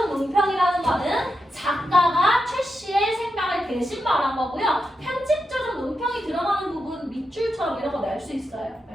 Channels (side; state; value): both; normal; correlation 0.87